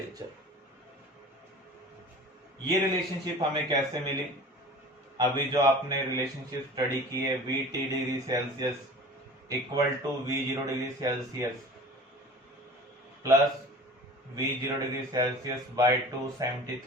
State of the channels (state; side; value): normal; both; correlation 0.41